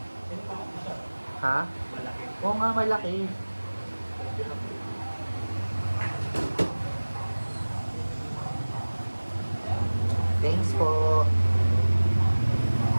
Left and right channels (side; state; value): both; inverted; correlation -1.00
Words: Yung malaki siya. Ha? Malaki. Oo nga, malaki. Thanks po.